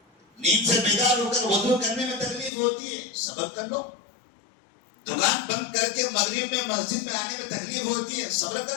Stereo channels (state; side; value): drops out; right; at 2.5 s